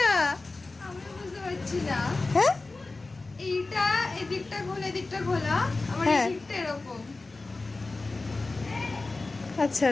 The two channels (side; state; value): right; quieter; 3.4 dB